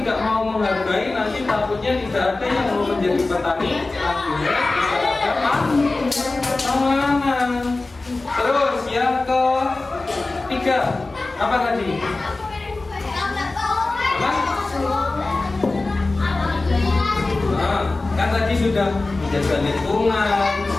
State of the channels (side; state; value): right; quieter; 3.3 dB